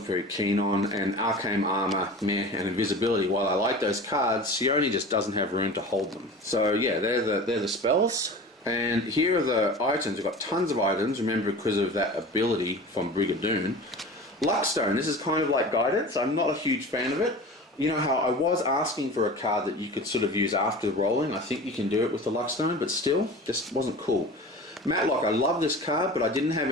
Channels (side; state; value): both; normal; correlation 0.36